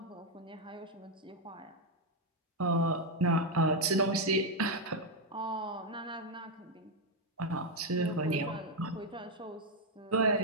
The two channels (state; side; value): normal; both; correlation 0.02